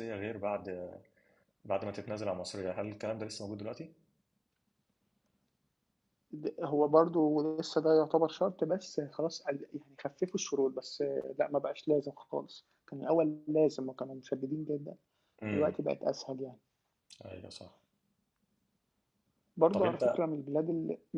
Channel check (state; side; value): identical; both; correlation 1.00